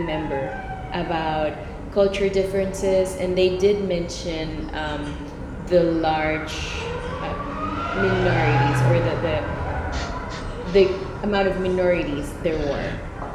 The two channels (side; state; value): both; identical; correlation 1.00